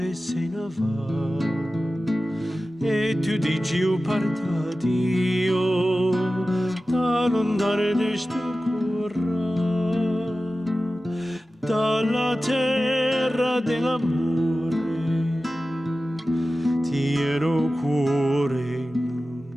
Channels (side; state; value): both; normal; correlation 0.95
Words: se ne va. E tu dici io parta Dio, da lontano di sto cuore, dalla terra dell'amore, ti ero cuore